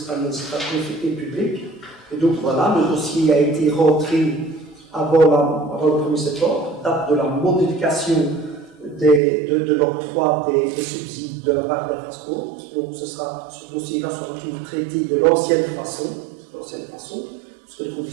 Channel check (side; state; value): left; drops out; at 9.2 s